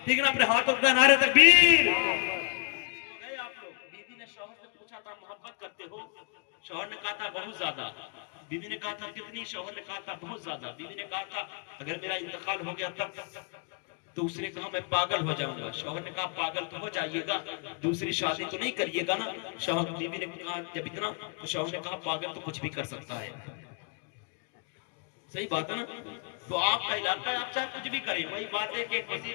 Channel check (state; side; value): quieter; right; 36.2 dB